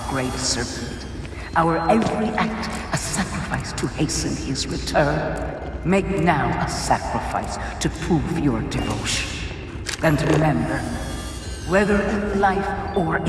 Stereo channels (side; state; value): both; identical; correlation 1.00